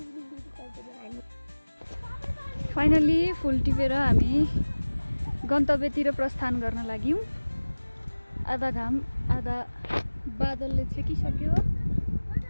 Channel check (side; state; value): both; inverted; correlation -1.00